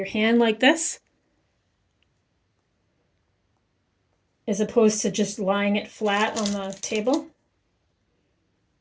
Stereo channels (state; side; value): identical; both; correlation 1.00